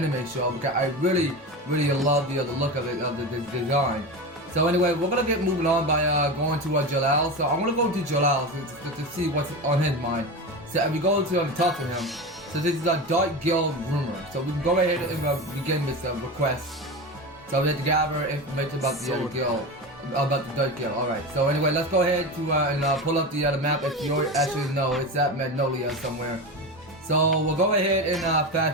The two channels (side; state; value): both; normal; correlation 0.24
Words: show. Because I really love the look of it, of the design. So anyway, we're gonna get moving on by going to Jellal. So I'm gonna go to Jellal to see what's on his mind. So we go to talk to him. So this is a Dark Guild rumor. So we can go ahead and begin this request. So we have to gather information about the guild, about the Dark Guild. All right. So anyway, let's go ahead to and pull up the map. If you actually know, it's at Magnolia somewhere. So we'll go ahead and